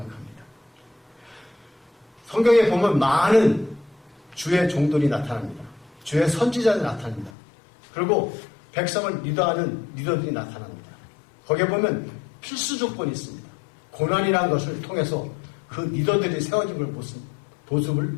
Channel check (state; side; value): drops out; right; at 7.3 s